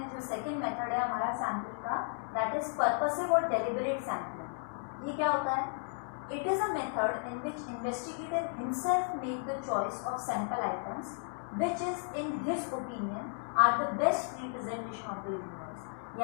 जो सेकेंड मेथड है हमारा सैम्पलिंग का, दैट इज पर्पसिव और डेलिबरेट सैम्पलिंग। ये क्या होता है? It is a method in which investigator himself make the choice of sample items which is in his opinion are the best representation of the universe।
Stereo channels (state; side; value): silent; right; 55 dB below the other